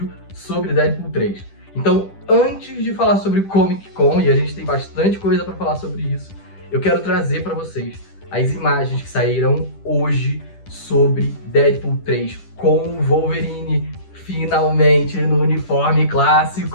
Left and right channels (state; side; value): late; right; 10 ms